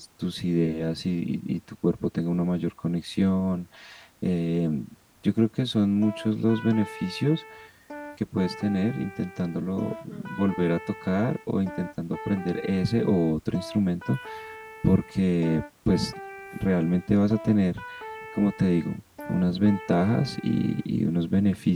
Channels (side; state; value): both; identical; correlation 1.00